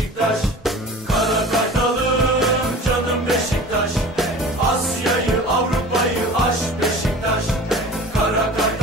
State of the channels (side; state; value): both; normal; correlation 0.40